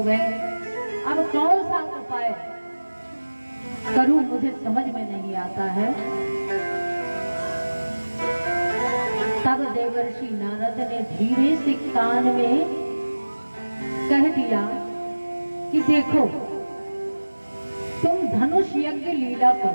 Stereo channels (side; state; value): both; inverted; correlation -1.00